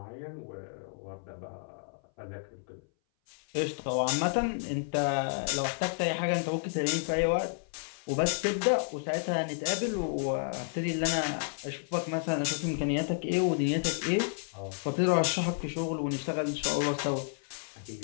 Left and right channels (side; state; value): right; silent; 57 dB below the other